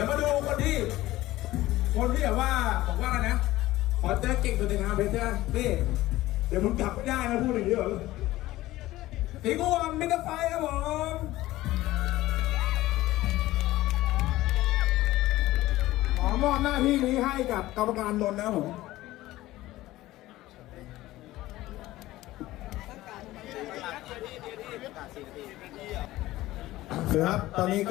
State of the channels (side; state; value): right; quieter; 16.7 dB